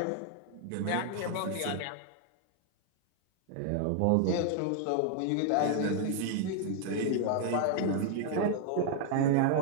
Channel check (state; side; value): different; both; correlation 0.00